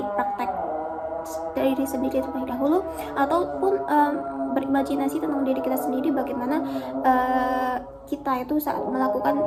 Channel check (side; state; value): both; identical; correlation 1.00